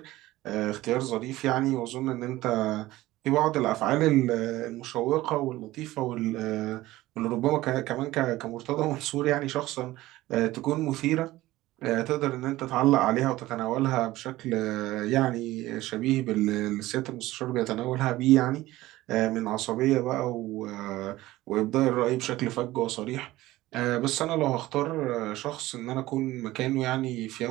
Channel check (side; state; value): left; quieter; 17.2 dB